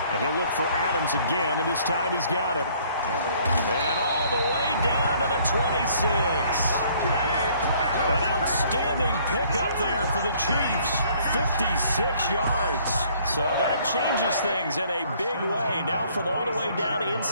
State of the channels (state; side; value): inverted; both; correlation -0.60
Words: And he'll look for Adams again, and this time he's got him. And all the way down to the 26. An outstanding pickup there for the Chiefs. 56 yards. So that changes things in a big way. Now from all the way down